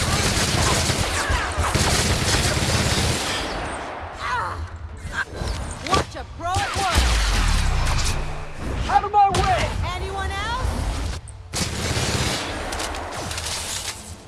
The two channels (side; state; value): both; identical; correlation 1.00